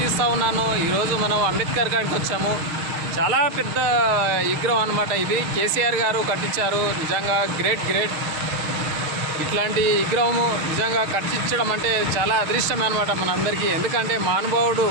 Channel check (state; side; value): late; left; 6.5 ms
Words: తీస్తూ ఉన్నాను. ఈరోజు మనం అంబేద్కర్ గారికి వచ్చాము. చాలా పెద్ద విగ్రహం అనమాట. ఇది కేసీఆర్ గారు కట్టించారు. నిజంగా గ్రేట్. ఇట్లాంటి విగ్రహము నిజంగా కట్టించడం అంటే చాలా అదృష్టమే అనమాట మనందరికీ. ఎందుకంటే మహానుభావుడు